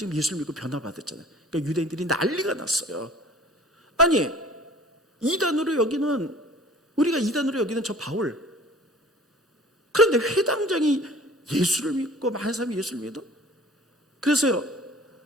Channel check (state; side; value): normal; both; correlation 0.48